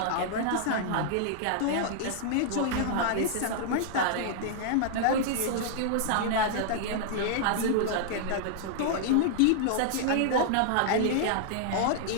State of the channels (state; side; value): different; both; correlation -0.01